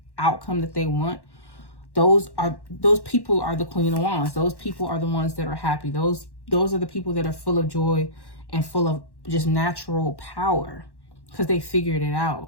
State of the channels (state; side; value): late; right; 1.1 ms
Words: outcome that they want, those people are the Queen of Wands. Those people are the ones that are happy. Those are the people that are full of joy and full of just natural power because they figured it